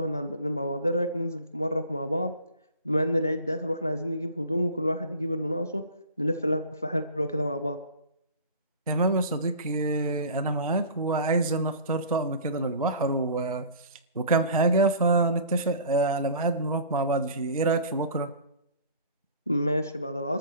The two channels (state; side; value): inverted; both; correlation -0.43